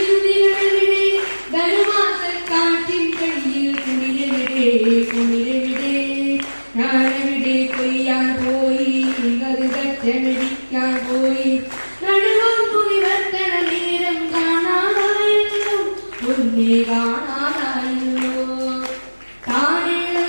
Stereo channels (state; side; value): inverted; both; correlation -1.00